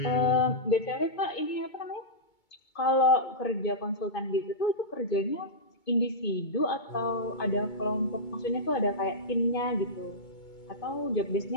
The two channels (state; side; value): late; right; 2.2 ms